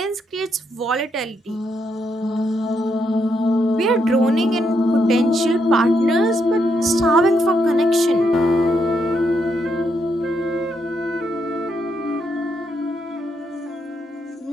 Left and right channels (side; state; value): both; normal; correlation 0.78